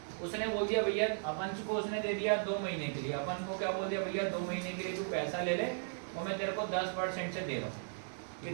उसने बोल दिया भैया, अपन को उसने दे दिया 2 महीने के लिए, अपन को क्या बोल दिया भैया 2 महीने के लिए तू पैसा ले ले और मैं तेरे को 10% से दे रहा हूँ।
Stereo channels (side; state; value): left; silent; digital silence